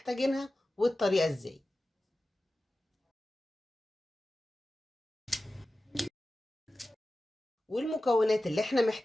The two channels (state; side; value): normal; both; correlation 0.95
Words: والطريقه ازاي. والمكونات اللي احنا